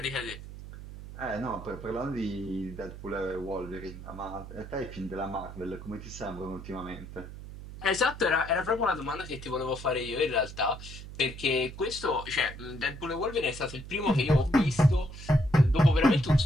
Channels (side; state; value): right; noise; hum, 12 dB below the sound